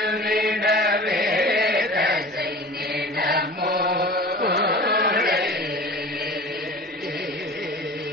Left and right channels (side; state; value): both; normal; correlation 0.39